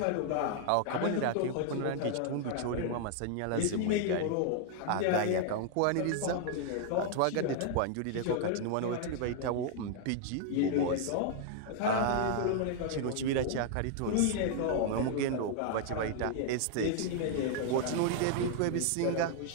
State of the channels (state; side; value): different; both; correlation 0.00